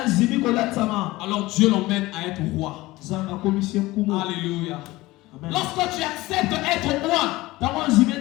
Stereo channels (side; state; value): right; quieter; 19.3 dB